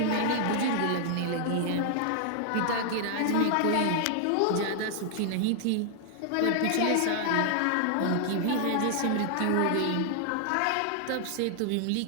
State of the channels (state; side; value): different; both; correlation 0.00